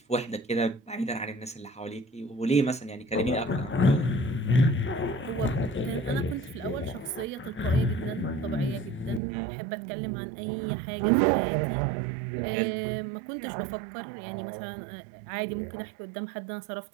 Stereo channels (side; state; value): left; drops out; at 9.2 s